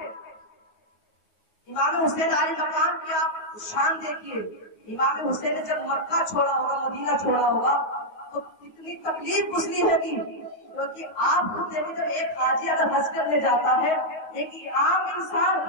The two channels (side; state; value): right; late; 9.4 ms